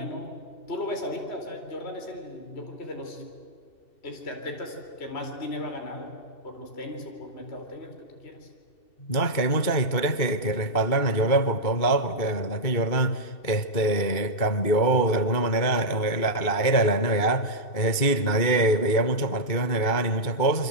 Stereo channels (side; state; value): right; late; 2.2 ms